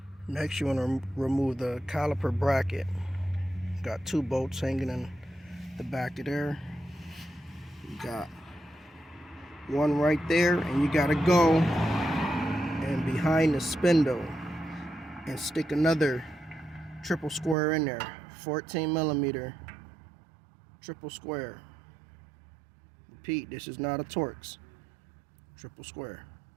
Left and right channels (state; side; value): drops out; left; at 17.6 s